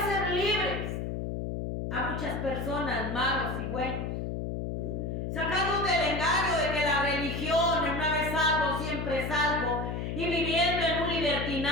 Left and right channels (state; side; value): noise; left; hum, 3 dB below the sound